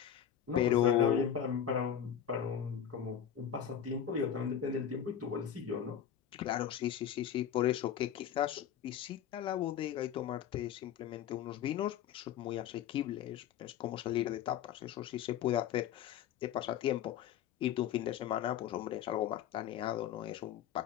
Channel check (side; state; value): right; quieter; 9.4 dB